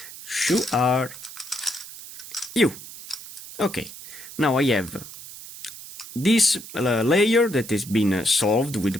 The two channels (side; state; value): right; noise; hiss, 14 dB below the sound